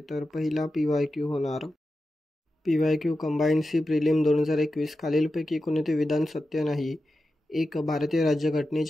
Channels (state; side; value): normal; both; correlation 0.91